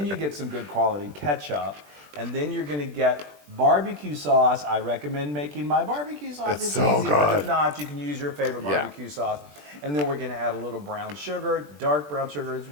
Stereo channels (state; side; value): late; left; 20 ms